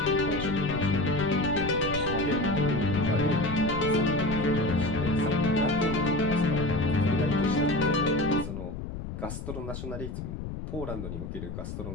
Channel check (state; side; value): noise; left; rumble, 7 dB below the sound